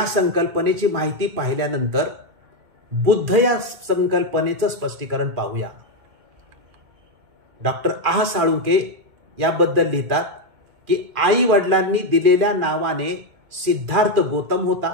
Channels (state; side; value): late; left; 2.2 ms